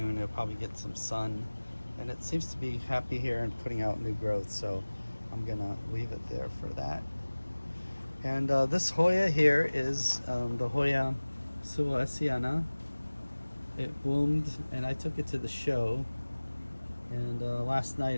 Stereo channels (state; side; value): inverted; both; correlation -1.00